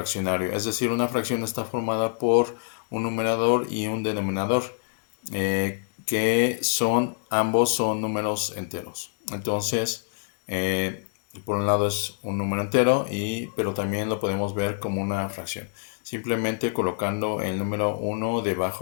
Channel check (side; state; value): right; silent; 61 dB below the other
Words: Es decir, una fracción está formada por un numerador y un denominador, que ambos son números enteros. Entonces, por un lado es un número entero, pero también lo podemos ver como una fracción, simplemente colocando el número uno